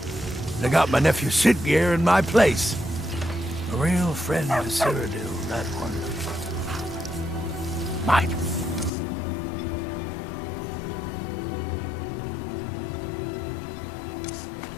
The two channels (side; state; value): right; drops out; at 8.9 s